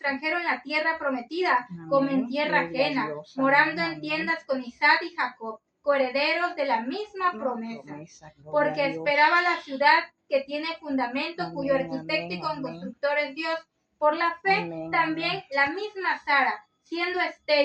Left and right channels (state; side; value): identical; both; correlation 1.00